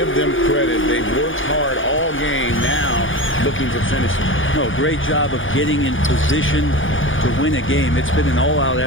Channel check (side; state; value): right; late; 0.57 ms